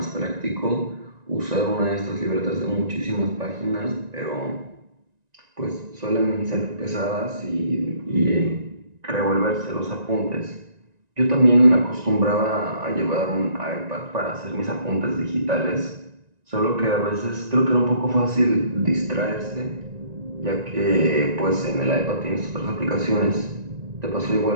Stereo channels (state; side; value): late; left; 1.9 ms